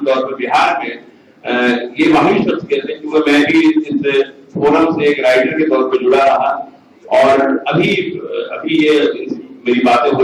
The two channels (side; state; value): both; identical; correlation 1.00